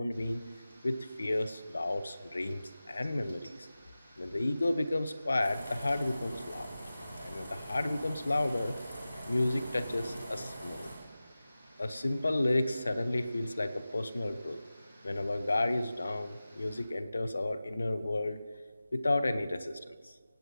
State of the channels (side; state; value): both; inverted; correlation -0.96